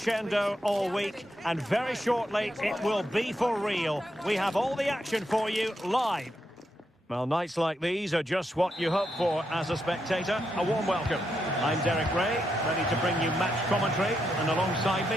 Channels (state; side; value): normal; both; correlation 0.82